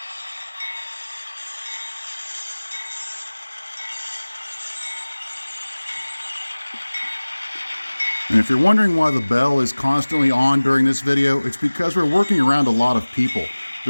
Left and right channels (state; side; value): inverted; both; correlation -1.00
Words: And if you're wondering why the bell is constantly on during this video, it's because we're working around a lot of people.